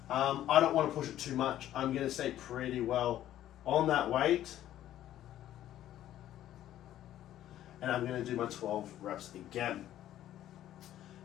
I don't want to push it too much. I'm going to stay pretty well on that weight. And I'm going to do my 12 reps again.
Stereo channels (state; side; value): quieter; right; 12.5 dB